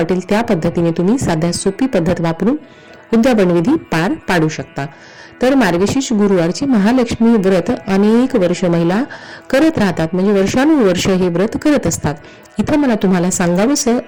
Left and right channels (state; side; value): identical; both; correlation 1.00